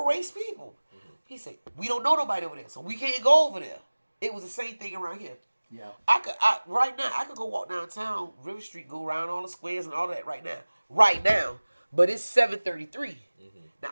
race people. He said, "We don't know nobody over there, so we can't go over there." It was the same thing around here. Yeah. Right now, I could go walk downtown, River Street, go around all the squares and all that right now. But it's 7:33. Now,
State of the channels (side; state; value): both; inverted; correlation -1.00